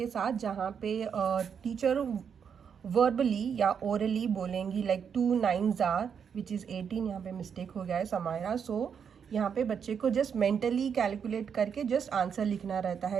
साथ, जहाँ पे टीचर वर्बली या ओरली बोलेंगी like 2 9s are which is 18। यहाँ पे मिस्टेक हो गया है समायरा। सो यहाँ पे बच्चे को जस्ट मेंटली कैलकुलेट करके जस्ट आंसर लिखना रहता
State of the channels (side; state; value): left; quieter; 7.2 dB